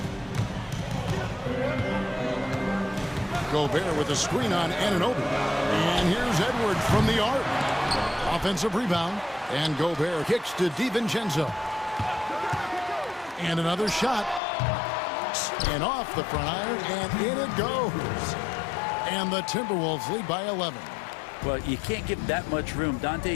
Gobert with a screen on Anunoby. And here's Edwards from the arc. Offensive rebound. And Gobert kicks to DiVincenzo. And another shot. And off the front iron. And in it goes. And the Timberwolves lead by 11. Well, you can't give that much room. Dante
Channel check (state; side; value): drops out; right; at 14.4 s